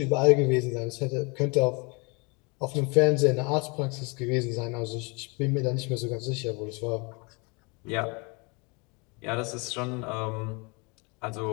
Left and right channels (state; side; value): quieter; right; 30.3 dB